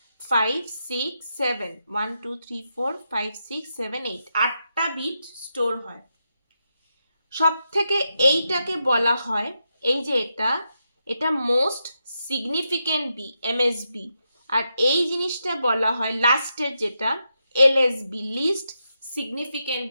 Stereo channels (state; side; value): inverted; both; correlation -0.85